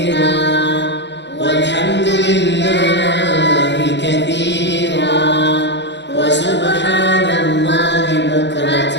والحمد لله كثيرا وسبحان الله بكرة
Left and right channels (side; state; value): right; late; 0.51 ms